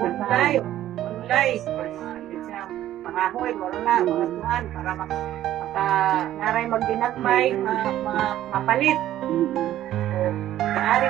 Pangahoy, wala na, mga tuhan, para naray magdinagmay, mga mapalit. So, maaari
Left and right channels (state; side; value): quieter; left; 12.9 dB